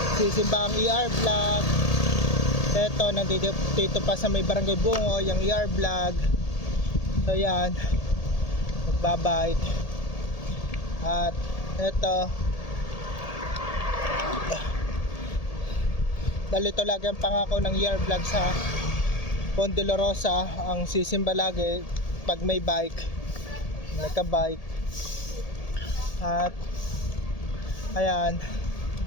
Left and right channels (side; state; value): right; late; 1.8 ms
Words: Sisimba ang ER vlog. Eto nandito pa sa may Barangay Bungoy yung ER vlog. So yan, nagbabike. At eto, dalito lagi ang pangako ng ER vlog sa Ponte La Rosa, ang sisimba lagi pag may bike, nagka-bike. At ayan,